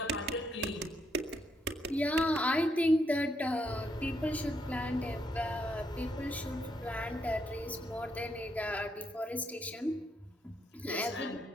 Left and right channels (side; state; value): both; normal; correlation 0.77